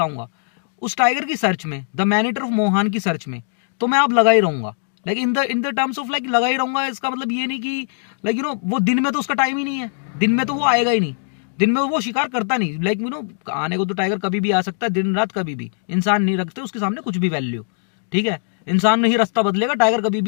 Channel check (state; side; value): silent; right; digital silence